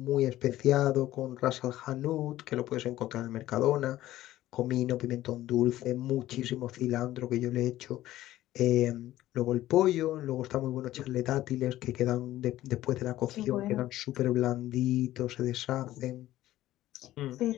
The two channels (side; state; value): right; quieter; 14.8 dB